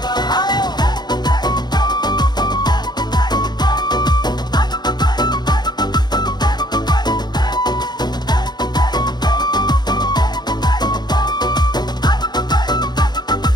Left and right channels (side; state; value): right; late; 0.20 ms